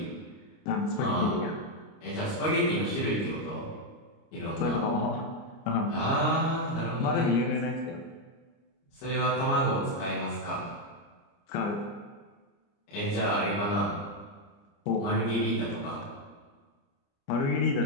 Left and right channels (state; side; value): late; right; 29 ms